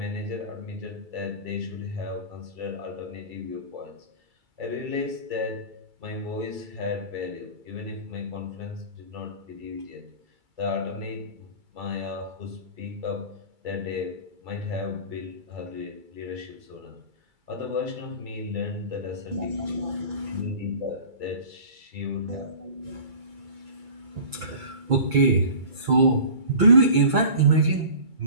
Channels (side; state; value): left; late; 2.3 ms